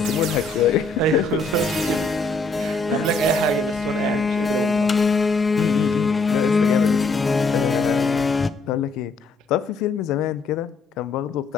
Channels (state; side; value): quieter; right; 3.5 dB